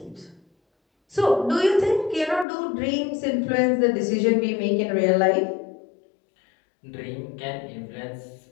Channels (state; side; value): drops out; right; at 2.5 s